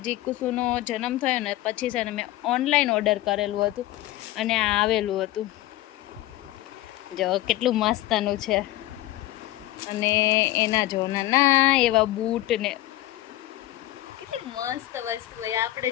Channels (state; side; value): quieter; right; 16.2 dB